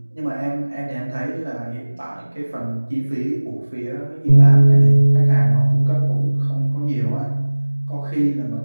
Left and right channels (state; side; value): inverted; both; correlation -1.00